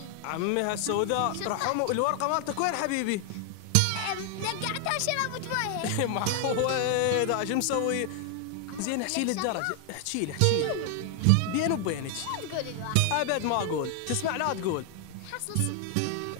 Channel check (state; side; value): different; both; correlation 0.00